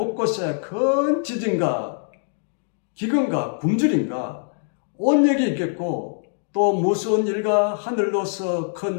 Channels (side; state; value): right; silent; digital silence